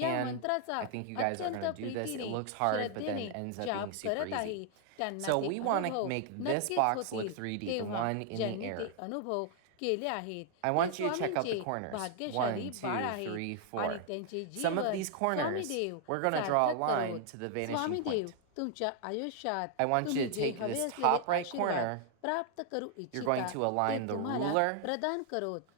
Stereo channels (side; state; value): both; different; correlation 0.00